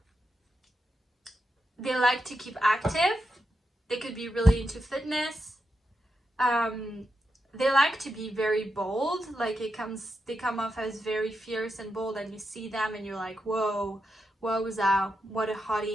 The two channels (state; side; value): normal; both; correlation 0.86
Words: They like to keep active. They could be really into fitness. They like to be very bold. Like they come off as very fierce and bold, and you see them and you're like, whoa, wowza, what a